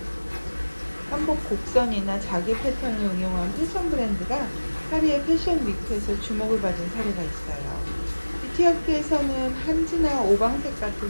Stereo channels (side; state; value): both; inverted; correlation -1.00